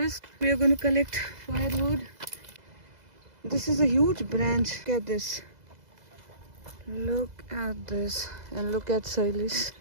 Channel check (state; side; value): late; left; 2.0 ms